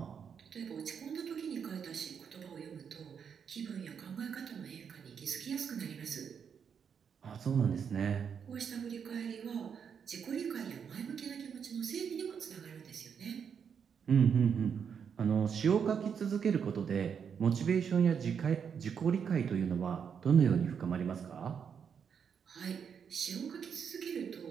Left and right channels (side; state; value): left; quieter; 7.1 dB